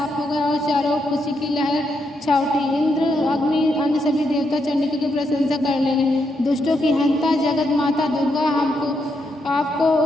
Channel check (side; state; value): both; normal; correlation 0.80